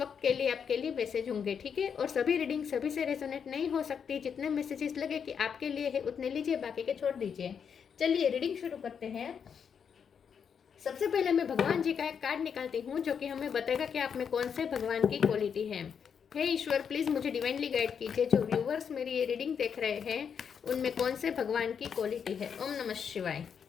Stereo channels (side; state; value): right; quieter; 7.1 dB